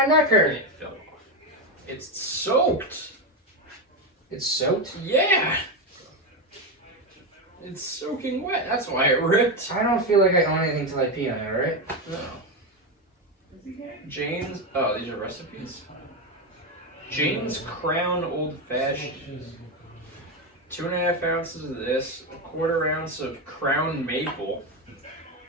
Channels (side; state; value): both; normal; correlation 0.11